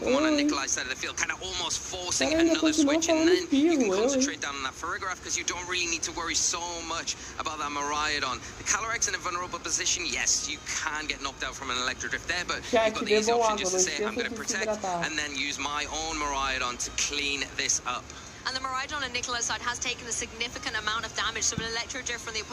on Nikolai's side of the field, kind of almost forcing another switch, and then you can concentrate down on that Farigiraf because you don't really need to worry so much about that Miraidon. The Calyrex in a vulnerable position, yes, you can get knocked out from an Electro Drift there, but you've got the easy option just to say, I'm going to protect, and then use my own Miraidon to clean this up. And the Miraidon on Nikolai's side has taken a significant amount of damage, so an Electro Drift from the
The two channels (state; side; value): identical; both; correlation 1.00